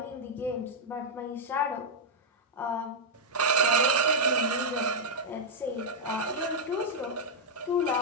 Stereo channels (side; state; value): both; normal; correlation -0.04